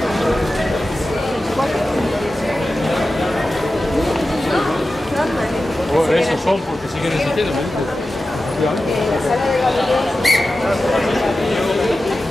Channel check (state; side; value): normal; both; correlation 0.93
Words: Esos son porque siguen existiendo.